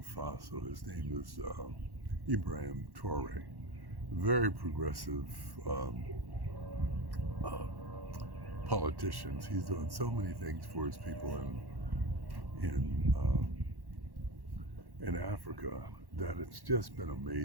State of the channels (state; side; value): late; left; 1.1 ms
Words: Faso. His name is Ibrahim Traore, very progressive um, uh, politician. He's doing so many things for his people in Africa that it's just been